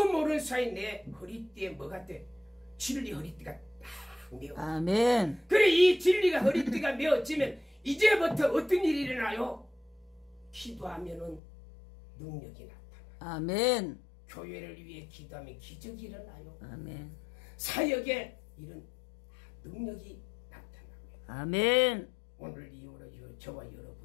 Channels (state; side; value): drops out; right; at 11.4 s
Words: 모르는 사이 내 허리띠에 뭐가 돼? 진리 허리띠가 딱 메어. 아멘. 그래, 이 진리가 허리띠가 메어지면 이제부터 어떤 일이 일어나요? 기도하면은 능력이 나타나. 아멘. 교회를 위해 기도하면 기적이 일어나요. 아멘. 사역에 이런 능력이 나타납니다. 아멘. 오늘 이후로 저와